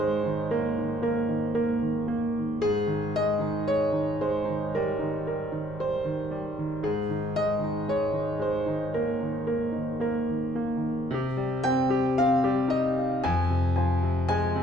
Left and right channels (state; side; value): noise; left; rumble, 20 dB below the sound